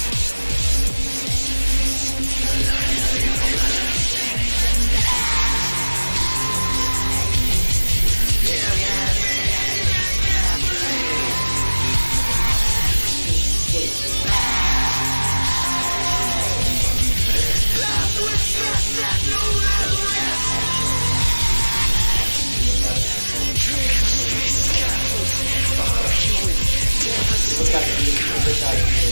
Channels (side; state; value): both; inverted; correlation -1.00